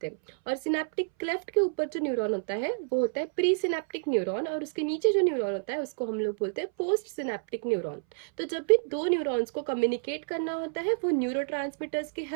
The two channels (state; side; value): silent; left; 58 dB below the other